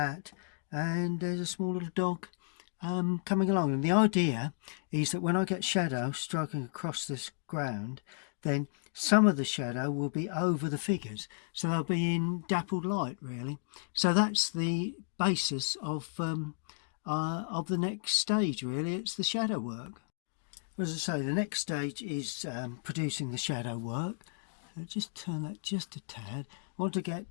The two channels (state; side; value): silent; right; digital silence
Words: and there's a small little dog coming along. And the idea is that when I get shadow striking across this ground, then some of the shadow will be over the figures, so they'll be in dappled light, really. So that's the basis of the next stage, really. It's the shadow work. As I say, the next stage is producing the shadow work. So just turn that just a tad. I want to